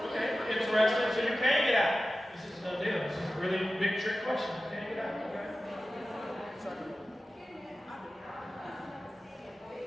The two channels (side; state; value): both; normal; correlation 0.95